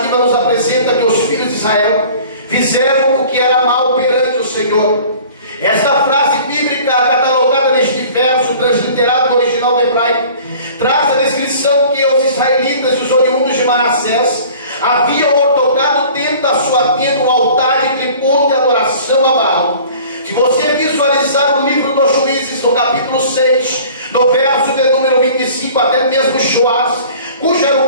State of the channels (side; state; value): both; inverted; correlation -0.47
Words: nos apresenta que os filhos de Israel fizeram o que era mal perante o Senhor. Esta frase bíblica, catalogada neste verso, transliterado no original hebraico, traz a descrição que os israelitas e os oriundos de Manassés haviam ortogado dentro da sua tenda um altar de tributo e adoração a Baal. Se você visualizar o livro dos Juízes, no capítulo 6, no verso de número 25, até mesmo Joás, cujo era